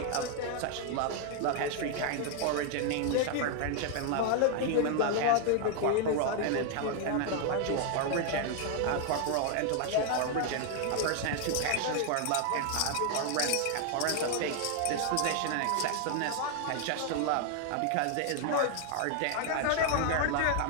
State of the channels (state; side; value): different; both; correlation 0.00